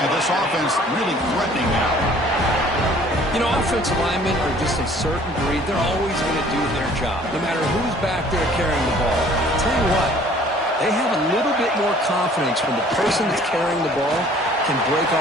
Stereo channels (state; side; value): normal; both; correlation 0.54